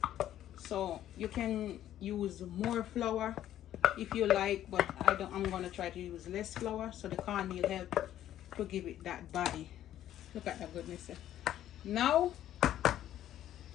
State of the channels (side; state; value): right; quieter; 12.0 dB